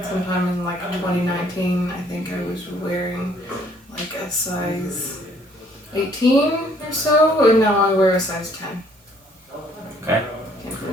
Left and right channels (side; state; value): both; normal; correlation 0.62